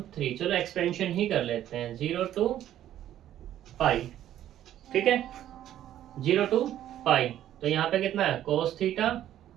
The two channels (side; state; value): left; quieter; 11.9 dB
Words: चलो एक्सपेंशन ही कर लेते हैं 0 टू पाई। ठीक है, 0 to पाई, तो यहाँ पे कितना है cos theta